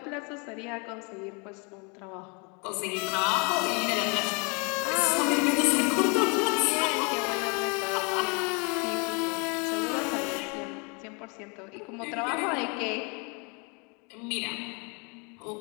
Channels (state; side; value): quieter; right; 32.4 dB